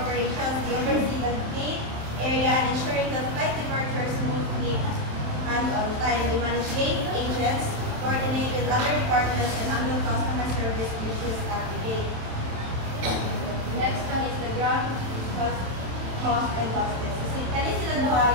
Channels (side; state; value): left; late; 27 ms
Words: They oversee the gate area and ensuring that flight departures smoothly and on time. They manage gate agents, coordinate with other departments, and handle customer service issues at the gate. The next one is the ground host and hostess. Kani sila duha